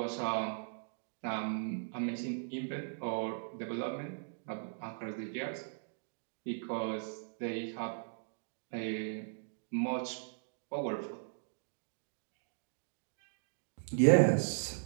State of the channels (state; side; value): silent; left; digital silence